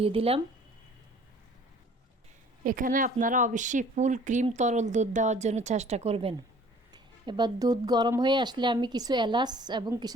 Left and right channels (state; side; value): normal; both; correlation 0.52